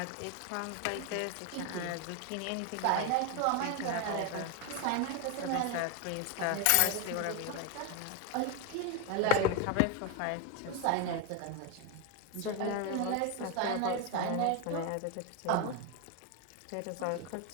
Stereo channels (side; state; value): both; different; correlation 0.01